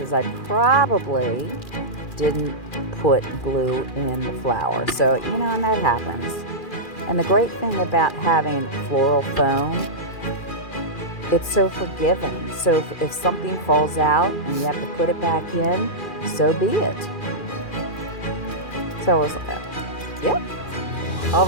I probably didn't put glue in the flower. So, you know, and that happens. And the great thing about having floral foam, it's so forgiving. So if something falls out and you have to put it back in, so be it. So I was like, yep. All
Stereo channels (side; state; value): right; late; 2.4 ms